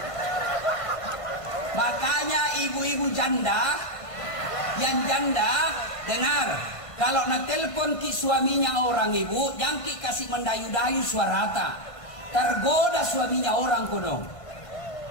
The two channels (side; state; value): right; late; 1.5 ms